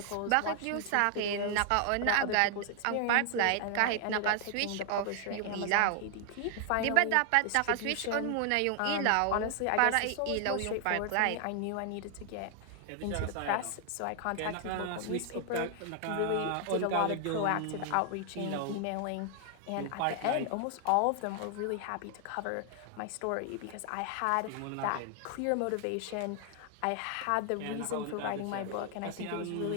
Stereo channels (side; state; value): both; different; correlation 0.00